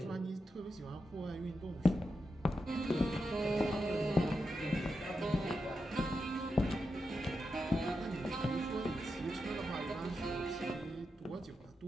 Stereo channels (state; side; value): normal; both; correlation 0.87